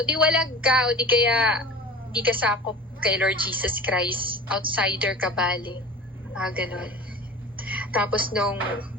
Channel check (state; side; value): normal; both; correlation 0.37